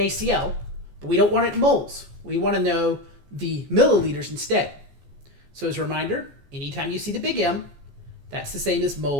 but we don't want it in moles. We want to know the milliliters instead. So as a reminder, anytime you see the big M, that's the same as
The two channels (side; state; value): left; late; 14 ms